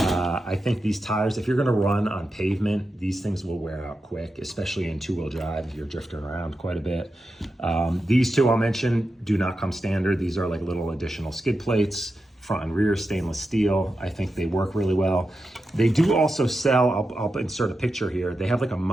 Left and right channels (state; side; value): normal; both; correlation 0.89